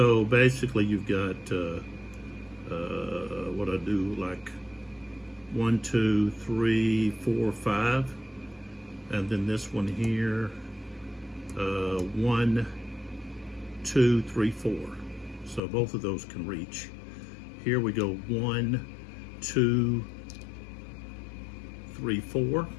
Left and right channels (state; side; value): drops out; right; at 15.6 s